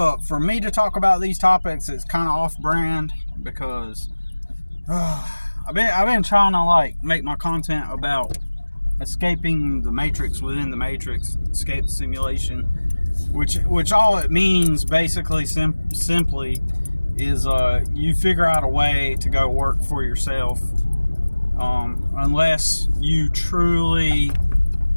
For me to talk about these topics, it's kind of off-brand because I've been trying to make my content about escaping the matrix within the matrix, escape the simulation, which all it means basically simply is you figure out a way to go work for yourself, unless you truly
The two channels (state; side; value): inverted; both; correlation -1.00